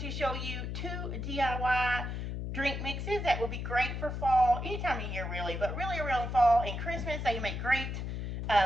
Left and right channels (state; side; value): noise; left; hum, 4 dB below the sound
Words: show you 2 DIY drink mixes that will be great for fall, any time of year really, but really around fall and Christmas. They make great